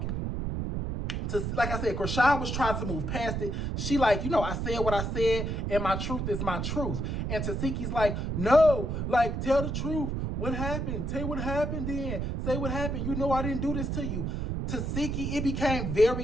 Like I said, Chrisean was trying to move past it. She like, you know, I said what I said, and my truth is my truth. And Tasiki's like, no, like, tell the truth. What happened? Tell what happened then. Say what happened. You know I didn't do this to you. Tasiki, it became very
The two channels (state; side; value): noise; right; rumble, 2 dB below the sound